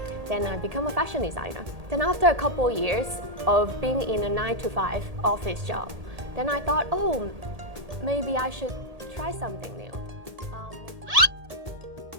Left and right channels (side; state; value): left; late; 1.8 ms